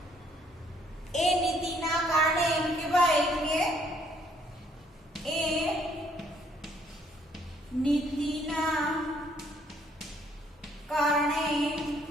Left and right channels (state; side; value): normal; both; correlation 0.66